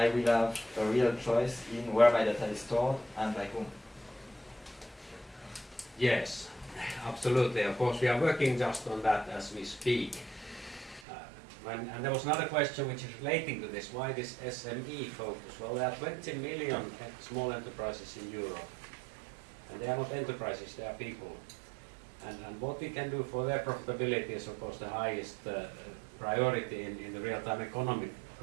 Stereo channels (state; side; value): drops out; left; at 11.1 s